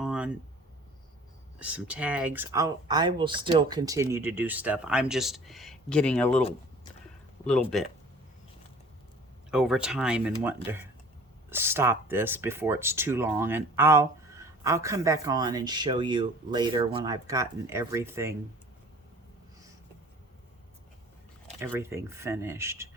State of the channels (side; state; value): both; normal; correlation 0.47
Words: some tags. I will still continue to do stuff. I'm just getting a little bit over time and wanting to stop this before it's too long. And I'll come back on and show you later when I've gotten everything finished.